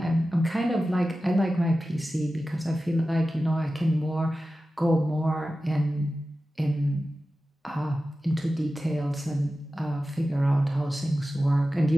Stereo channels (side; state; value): both; normal; correlation 0.94